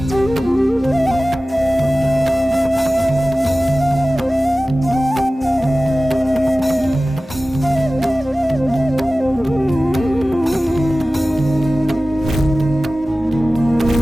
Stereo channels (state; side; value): normal; both; correlation 0.97